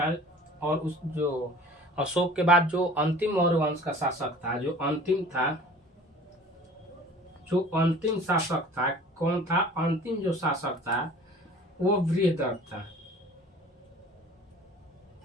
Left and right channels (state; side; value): normal; both; correlation 0.46